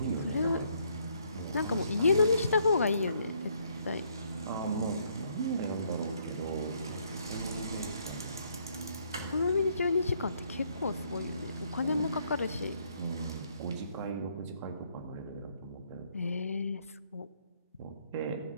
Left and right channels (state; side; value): inverted; both; correlation -0.69